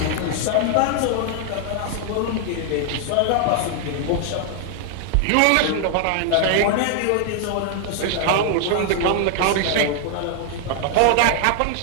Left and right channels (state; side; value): different; both; correlation 0.00